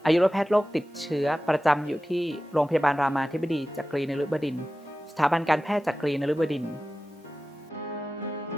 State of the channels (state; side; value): normal; both; correlation 0.95